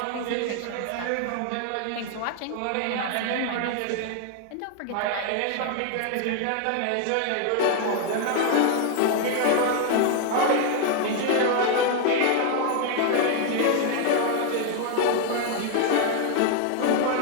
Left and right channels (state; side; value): different; both; correlation 0.00